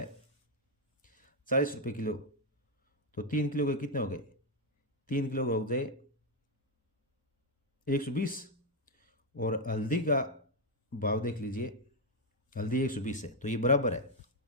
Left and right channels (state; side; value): normal; both; correlation 0.02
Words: 40 रुपये किलो, तो 3 किलो के कितने हो गए, 3 किलो का हो जाए 120। और हल्दी का भाव देख लीजिए, हल्दी 120 है, तो ये बराबर है,